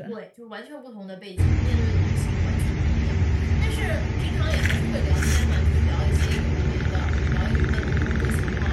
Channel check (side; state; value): both; identical; correlation 1.00